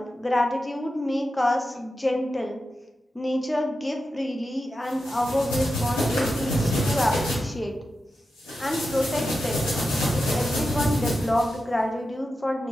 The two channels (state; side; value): normal; both; correlation 0.90